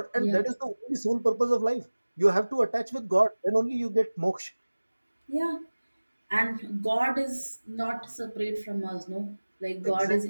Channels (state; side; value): inverted; both; correlation -1.00